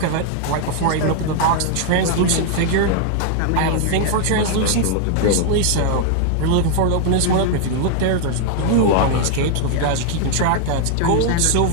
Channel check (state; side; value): different; both; correlation 0.00